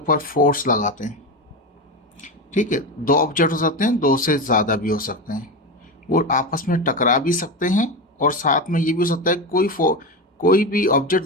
फोर्स लगाते हैं। ठीक है, दो ऑब्जेक्ट हो सकते हैं, दो से ज़्यादा भी हो सकते हैं, वो आपस में टकरा भी सकते हैं, और साथ में ये भी हो सकता है कोई भी ऑब्जेक्ट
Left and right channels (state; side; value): normal; both; correlation 0.19